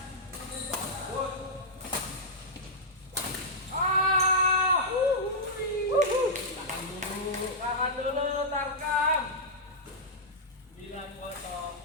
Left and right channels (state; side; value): normal; both; correlation -0.09